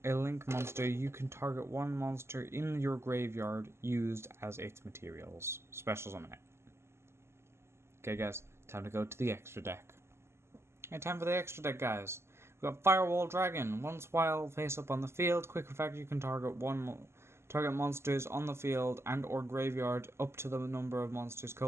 a link monster, you can target one monster in your graveyard used as its materials. Special summon it. Okay, guys, time to go to the extra deck. Okay, time for the extra deck, guys. We've got Firewall Dragon. Once while face up on the field, quick effect, you can target monsters on the field and or graveyard up to the number of monsters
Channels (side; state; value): left; late; 0.12 ms